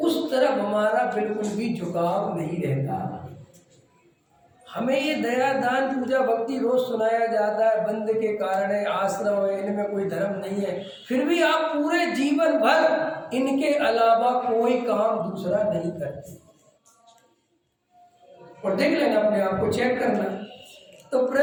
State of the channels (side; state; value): both; identical; correlation 1.00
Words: तरफ हमारा बिल्कुल भी झुकाव नहीं रहता। हमें ये दया दान पूजा भक्ति रोज सुनाया जाता है, बंद के कारण है, आश्रम है, इनमें कोई धर्म नहीं है, फिर भी आप पूरे जीवन भर इनके अलावा कोई काम दूसरा नहीं करते। और देख लेना, अपने आप को चेक करना। तो